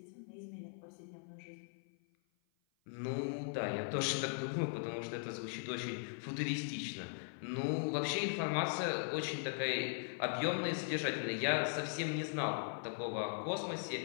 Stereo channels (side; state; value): right; silent; 51 dB below the other